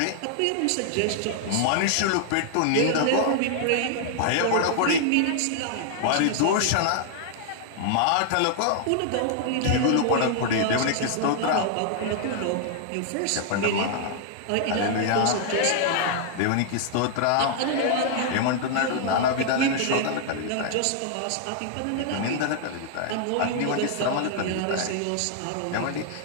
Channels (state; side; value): different; both; correlation 0.00